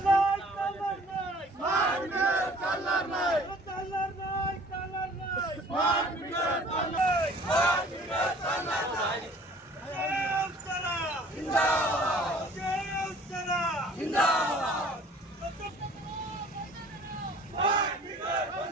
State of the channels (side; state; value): both; normal; correlation 0.51